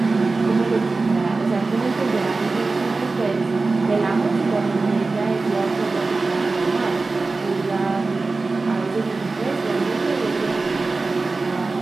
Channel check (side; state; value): left; quieter; 3.7 dB